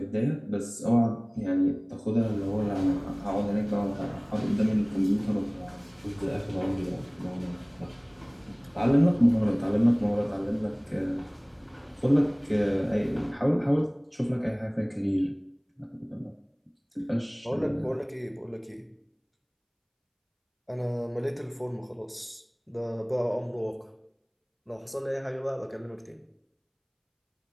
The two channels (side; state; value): both; identical; correlation 1.00